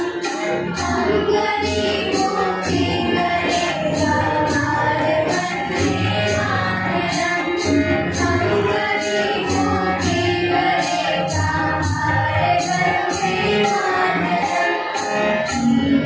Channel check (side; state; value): both; identical; correlation 1.00